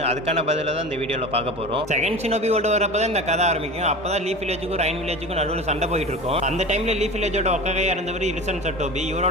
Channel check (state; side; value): normal; both; correlation 0.32